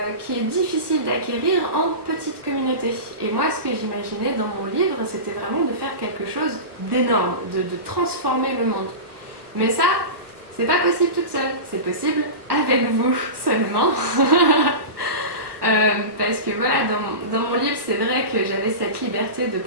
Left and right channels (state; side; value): late; left; 1.2 ms